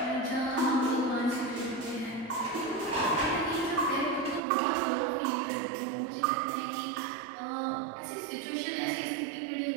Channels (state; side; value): drops out; left; at 4.4 s